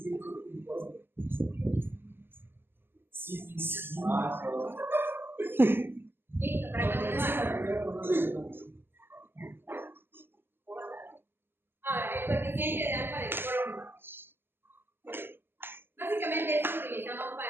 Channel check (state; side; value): late; left; 0.10 ms